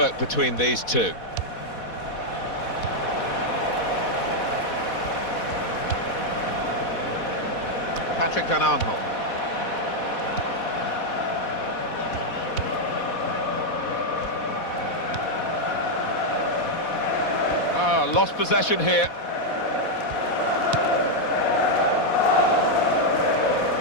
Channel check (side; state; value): right; late; 4.1 ms